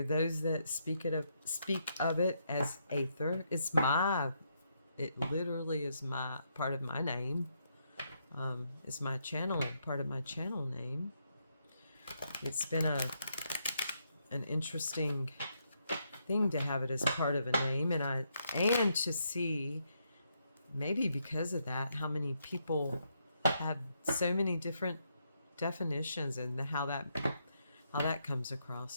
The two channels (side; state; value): both; inverted; correlation -0.77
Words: those that speak of it as aether. It literally is my part of my name. It's my channel, part of my channel name. It's been an interesting thing to have it as part of a name, and to see, maybe because of that, how many people have so many different definitions, and how that comes